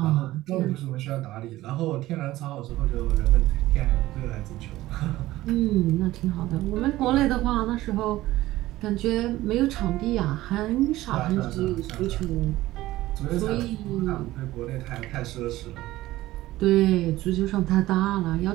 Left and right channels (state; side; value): quieter; left; 16.5 dB